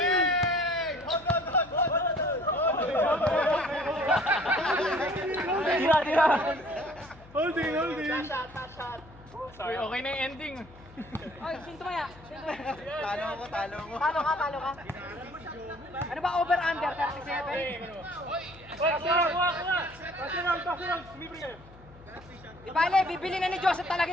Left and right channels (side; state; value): left; noise; hum, 22 dB below the sound